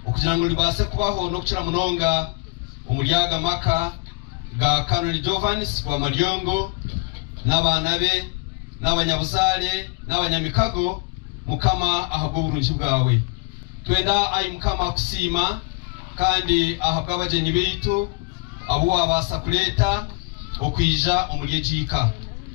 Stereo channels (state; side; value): quieter; right; 28.5 dB